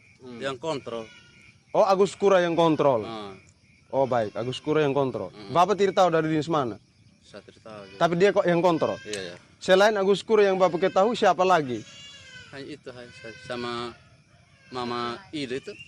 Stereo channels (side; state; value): both; identical; correlation 1.00